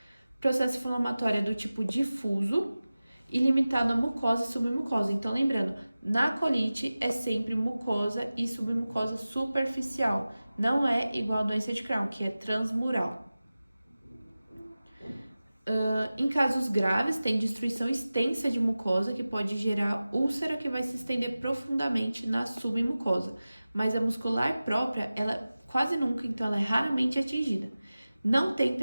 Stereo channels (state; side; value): inverted; both; correlation -0.96